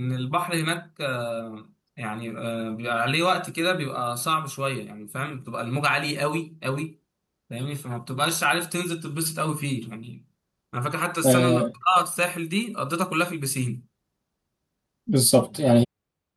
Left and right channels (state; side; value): identical; both; correlation 1.00